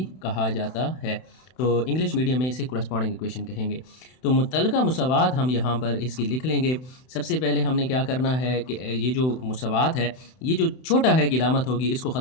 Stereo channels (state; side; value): late; right; 31 ms